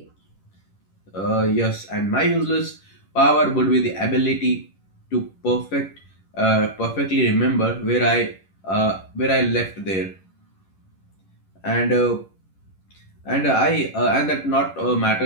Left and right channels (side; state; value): right; late; 11 ms